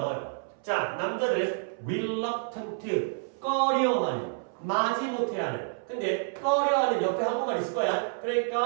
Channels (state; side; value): silent; left; 59 dB below the other